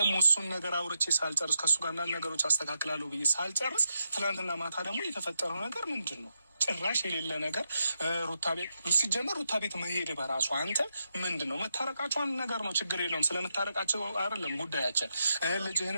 እሱን ነገር አውርቼ ሳልጨርስ ከእሱ ጋር አንዳንድ ነገሮች አስተካክላለሁ ብዬ ሳልጨርስ ትናንትና ማታ ደግሞ የተፈጠረው ነገር ምንድን ነው? ጭራሽ የሌለ ነገር ሩታ ቤት ሲጀመር ሩታ ቤት መሄድ በራሱ አንተ ምንድን ነው? መታረቃቸው አንድ ነገር ነው፣ ችግር የለውም። ስለመታረቃቸው አይደለም ጉዳያችን፣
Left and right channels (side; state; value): both; inverted; correlation -0.84